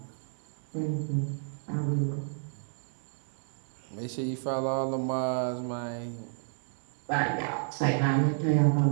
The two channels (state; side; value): silent; left; 57 dB below the other